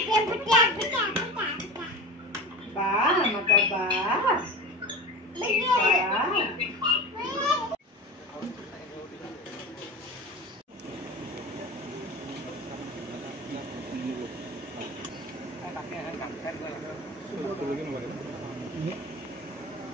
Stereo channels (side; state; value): both; normal; correlation 0.30